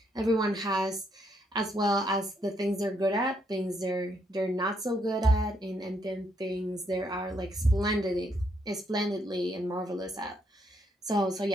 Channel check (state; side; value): normal; both; correlation 0.74